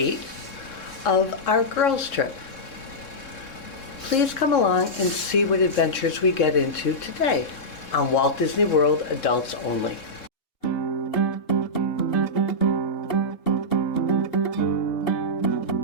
of our girls' trip. Please come along and see what adventures we get into today on Walt Disney World Adults Only.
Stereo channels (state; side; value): late; right; 3.7 ms